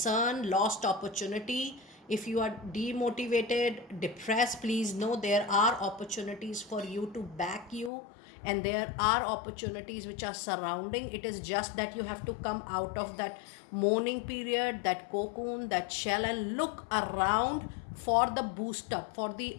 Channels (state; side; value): drops out; right; at 7.9 s